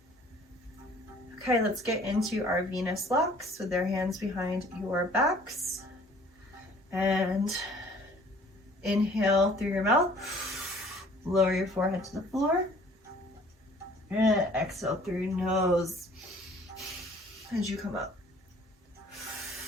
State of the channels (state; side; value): normal; both; correlation 0.54